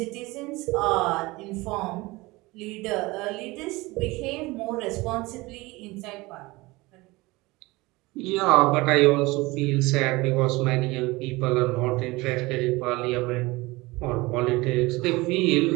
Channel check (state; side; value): quieter; left; 22.0 dB